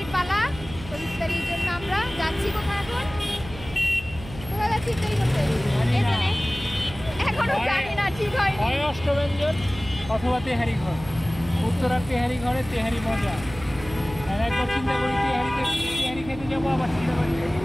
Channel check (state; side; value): noise; right; hum, 14 dB below the sound